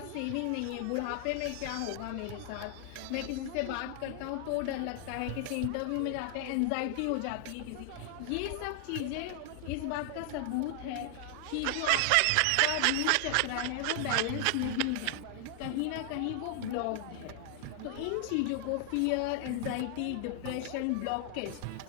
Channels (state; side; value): different; both; correlation 0.00